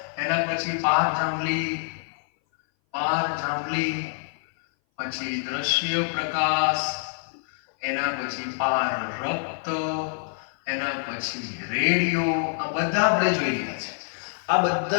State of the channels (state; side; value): silent; right; 58 dB below the other